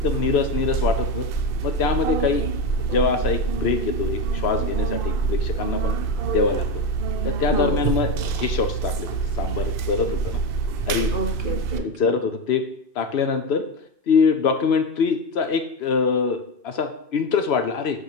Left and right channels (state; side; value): late; right; 2.6 ms